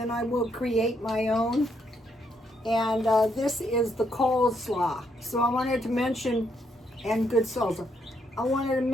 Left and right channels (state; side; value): normal; both; correlation 0.75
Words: I will create my own. And this is the coleslaw. So I wanted to mention, and good salsa. I wanted to